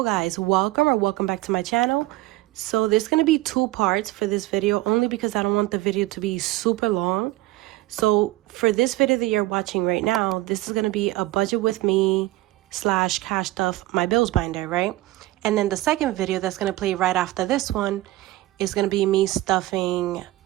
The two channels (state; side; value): quieter; left; 17.9 dB